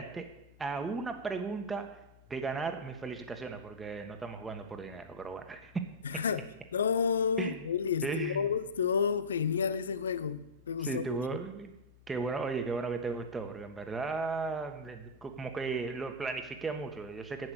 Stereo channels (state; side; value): noise; left; hum, 25 dB below the sound